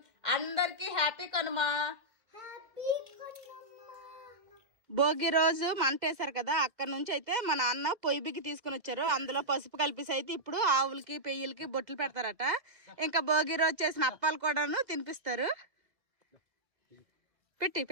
అందరికి happy Kanuma. Bhogi రోజు మంటేశారు కదా, అక్కడ నుంచి అయితే మా నాన్న పొయ్యి బిగ్గి తీసుకుని వచ్చారు. అందులో పసుపు కలిపేసి అయితే ఇప్పుడు ఆవులకి పెయ్యలకి బొట్లు పెడతారట. ఇంకా భోగి రోజు చేసిన అప్పాలు కూడాను తినిపిస్తారు. పెట్టి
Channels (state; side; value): late; left; 2.1 ms